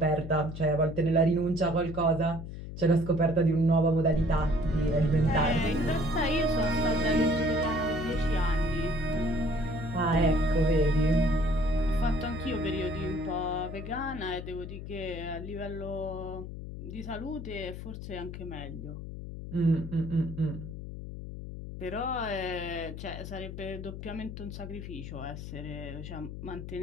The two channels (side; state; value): left; noise; hum, 9 dB below the sound